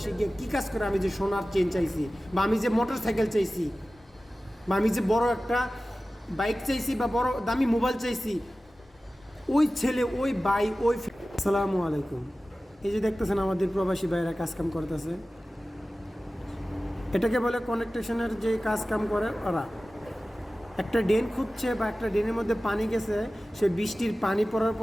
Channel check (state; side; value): normal; both; correlation 0.96